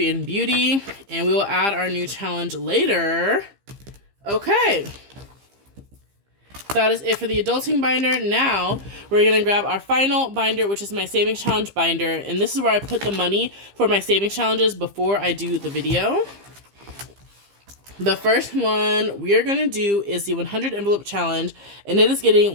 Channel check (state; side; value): late; left; 15 ms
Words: in beauty. And we will add our new challenge later. Okay. That is it for the adulting binder. Now, we're going to grab our final binder, which is my savings challenge binder. And this is where I put the money for my savings challenges before I do the video. The first one we are going to do is the 100 envelope challenge, and it is getting